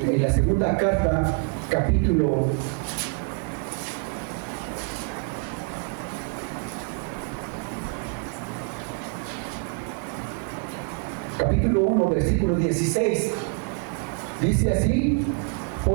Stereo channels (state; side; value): quieter; left; 37.6 dB